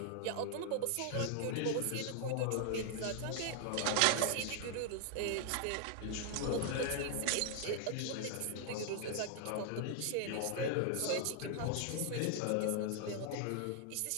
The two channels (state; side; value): different; both; correlation 0.00